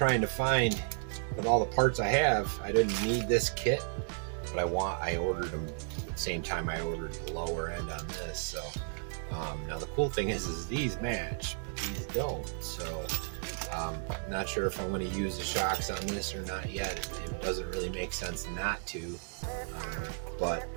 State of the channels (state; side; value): silent; left; 56 dB below the other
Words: to find, with all the parts I have, I didn't need this kit, but I ordered them at the same time I ordered the lower end on this. So now the cool thing is these match, but these don't. So not sure if I'm going to use the shocks on this or not yet. It doesn't really make sense not to, but